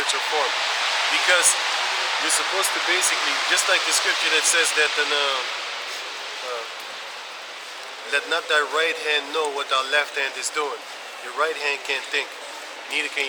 form. Because you're supposed to basically, just like the scripture that says that let not thy right hand know what thy left hand is doing. Your right hand can't think, neither can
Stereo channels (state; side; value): identical; both; correlation 1.00